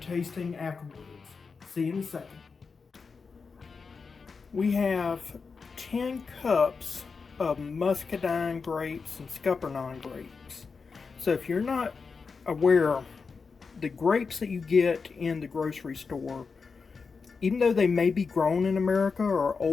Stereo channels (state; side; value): quieter; right; 5.0 dB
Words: afterwards. See you in a second. We have 10 cups of Muscadine grapes and Scuppernog grapes. So if you're not aware, the grapes that you get in the grocery store, even though they may be grown in America, are